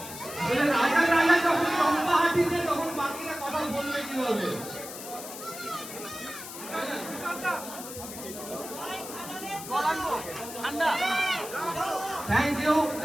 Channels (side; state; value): left; noise; hiss, 11 dB below the sound